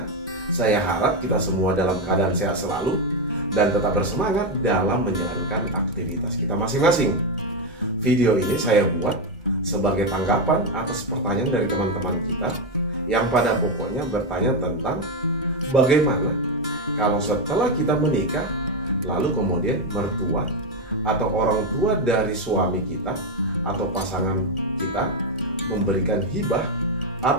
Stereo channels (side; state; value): both; normal; correlation 0.07